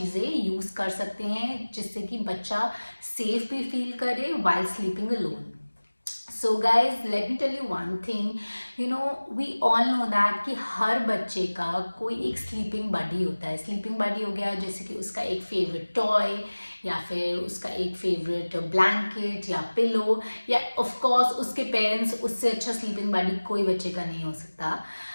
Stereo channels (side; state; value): both; inverted; correlation -1.00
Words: यूज़ कर सकते हैं जिससे कि बच्चा सेफ भी फील करे while sleeping alone. So guys, let me tell you one thing. We all know that कि हर बच्चे का कोई एक स्लीपिंग बडी होता है। स्लीपिंग बडी हो गया जैसे कि उसका एक फेवरेट टॉय या फिर उसका एक फेवरेट ब्लैंकेट या पिलो, या ऑफ कोर्स उसके पेरेंट्स। उससे अच्छा स्लीपिंग बडी कोई बच्चे का नहीं हो सकता।